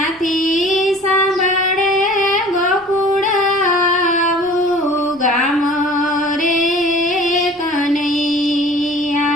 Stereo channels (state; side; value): normal; both; correlation 0.46